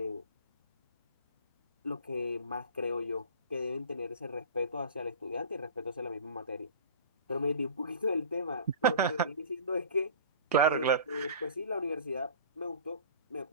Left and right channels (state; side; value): inverted; both; correlation -0.41